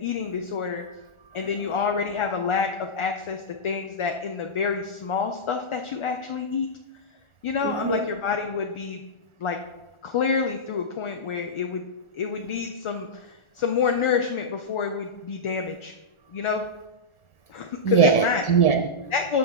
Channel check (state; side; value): late; right; 1.4 ms